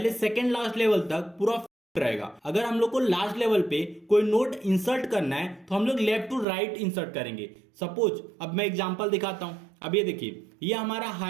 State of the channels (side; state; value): left; drops out; at 6.5 s